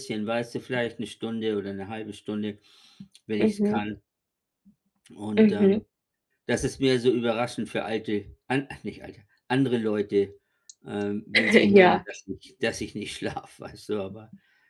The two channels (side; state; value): both; identical; correlation 1.00